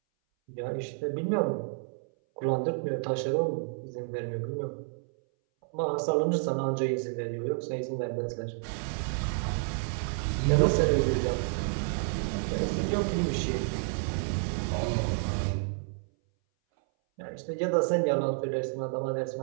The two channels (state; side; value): silent; left; 58 dB below the other